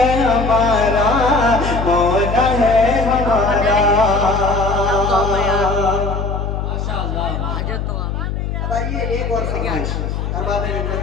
हमारा, मौला है हमारा। अब आइए एक और फरमाइश अरबाब मिल्लत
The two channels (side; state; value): left; noise; hum, 3 dB below the sound